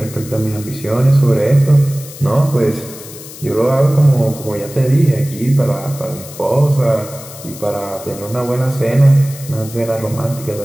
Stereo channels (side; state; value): left; noise; hiss, 15 dB below the sound